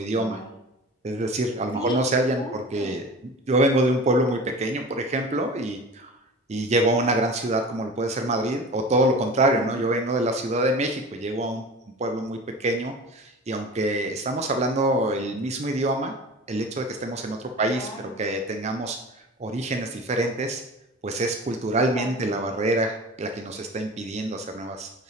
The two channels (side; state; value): both; normal; correlation 0.36